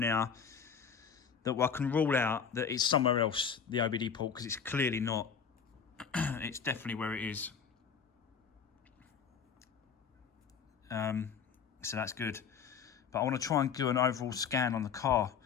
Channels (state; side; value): quieter; right; 6.8 dB